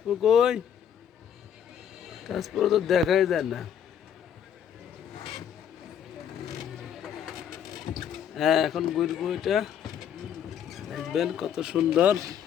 কই? তাসপো তো দেখাই যায় না। এখন ঘুরবো, এটা দেখবেন কত সুন্দর।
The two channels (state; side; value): quieter; right; 8.9 dB